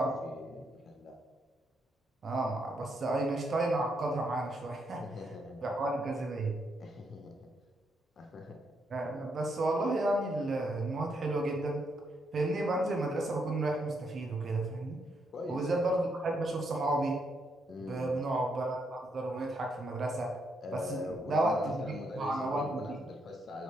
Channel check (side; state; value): both; normal; correlation 0.77